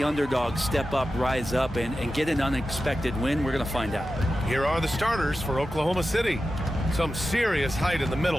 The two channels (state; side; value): normal; both; correlation 0.92